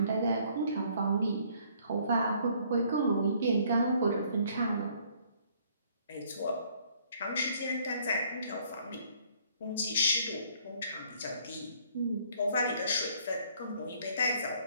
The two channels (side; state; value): both; inverted; correlation -0.62